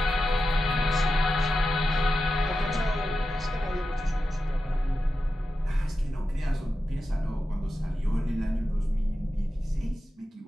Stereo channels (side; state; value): both; normal; correlation 0.91